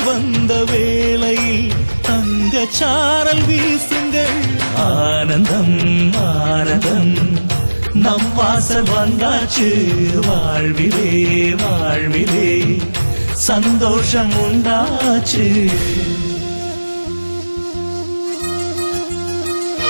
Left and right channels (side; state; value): both; inverted; correlation -1.00